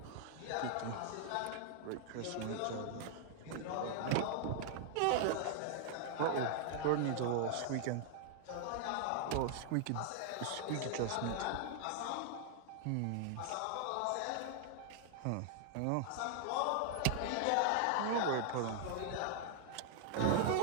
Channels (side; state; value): both; different; correlation 0.00